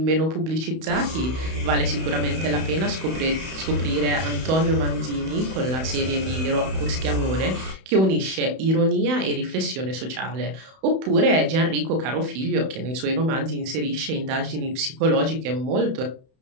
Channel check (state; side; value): late; left; 31 ms